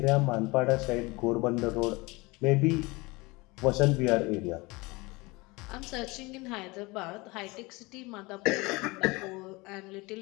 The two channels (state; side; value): quieter; right; 24.2 dB